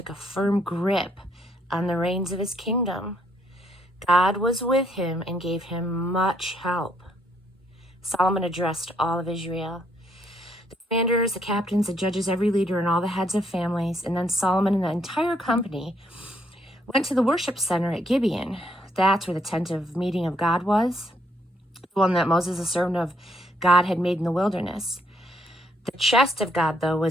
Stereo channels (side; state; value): both; normal; correlation 0.72